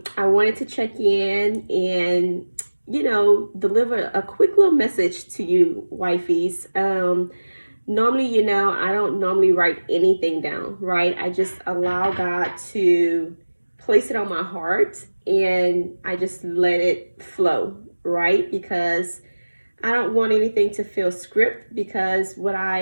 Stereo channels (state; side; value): inverted; both; correlation -1.00